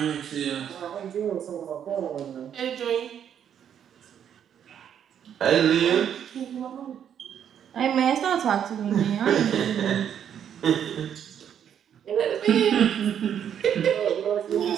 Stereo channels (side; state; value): left; quieter; 9.0 dB